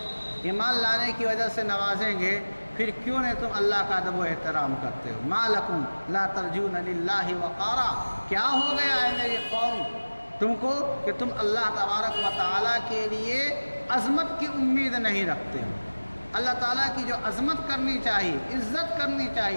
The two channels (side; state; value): both; inverted; correlation -1.00